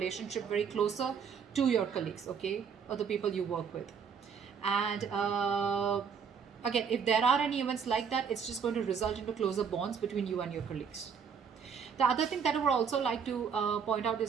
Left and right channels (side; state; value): left; quieter; 6.6 dB